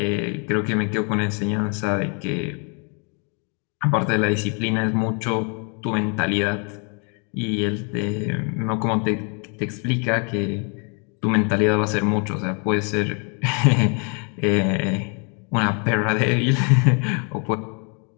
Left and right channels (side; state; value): right; quieter; 37.4 dB